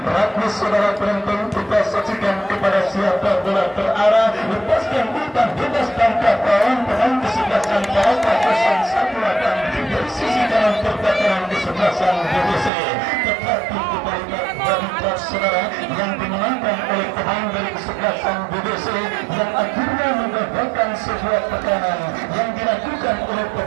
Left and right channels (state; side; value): drops out; left; at 12.7 s